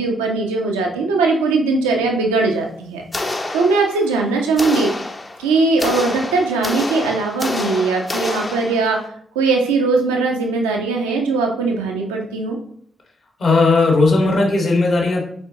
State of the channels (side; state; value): both; normal; correlation 0.66